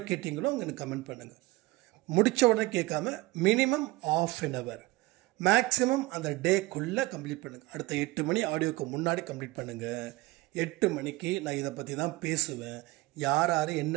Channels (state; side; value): quieter; left; 20.0 dB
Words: கேட்டீங்களோ அவங்க எனக்கு கமெண்ட் பண்ணுங்கள். முடித்த உடனே கேட்காம மினிமம் ½ அன் ஹவர் மேக்ஸிமம் அந்த டேக்குள்ளே கம்ப்ளீட் பண்ணுங்கள். அடுத்த 8 மணி ஆடியோக்கு முன்னாடி கம்ப்ளீட் பண்ணுங்கள். 8 மணிக்கு நான் இதை பற்றி தான் பேசுவேன். யார் யார்